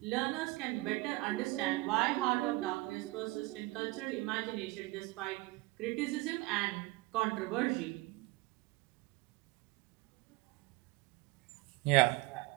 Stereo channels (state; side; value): quieter; left; 22.5 dB